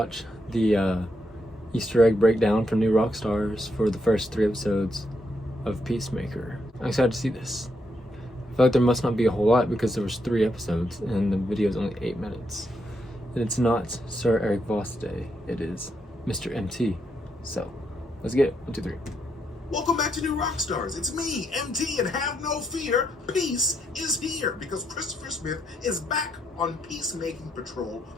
the Easter egg breakdown from New Rockstars for the first 3 episodes of Peacemaker. I'm excited to see this. I feel like there must not be a whole lot because there was 3 episodes and the video is only 8 minutes. And it's not Sir Eric Voss Day, it is Mr. MT. So, let's get it. 1, 2, 3. Welcome back to New Rockstars. It's me, MT, and have no fear, peace is here because Christopher Smith is back on Peacemaking Patrol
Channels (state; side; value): normal; both; correlation 0.79